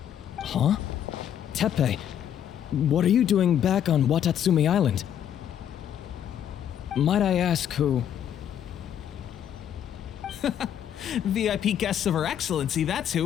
Huh? Teppei, what are you doing back on Watatsumi Island? Might I ask who? VIP guests of Her Excellency, that's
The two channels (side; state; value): right; quieter; 9.8 dB